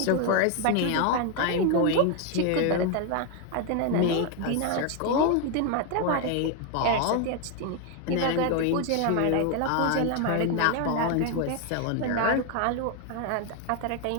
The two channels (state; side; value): different; both; correlation 0.01